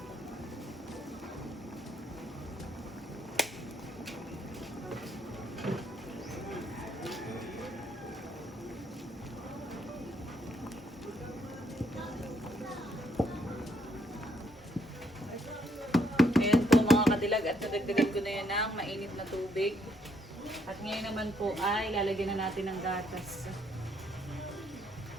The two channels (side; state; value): both; normal; correlation 0.71